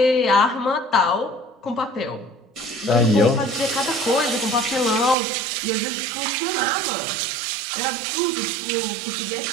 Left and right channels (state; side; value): drops out; left; at 5.2 s